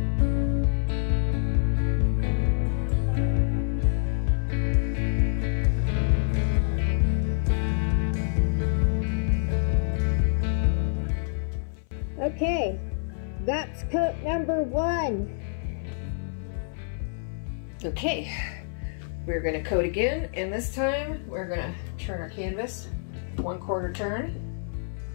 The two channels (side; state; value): right; silent; 58 dB below the other